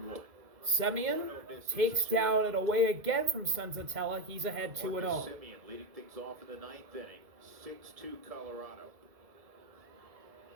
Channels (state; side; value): late; left; 2.0 ms